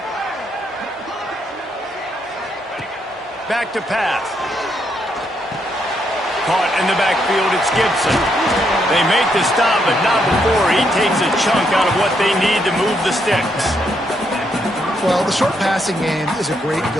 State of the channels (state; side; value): normal; both; correlation 0.76